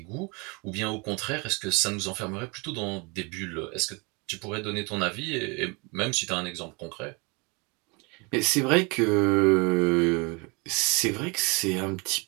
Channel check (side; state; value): left; quieter; 29.5 dB